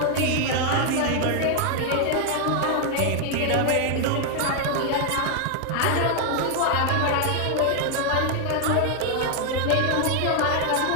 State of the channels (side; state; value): both; different; correlation 0.00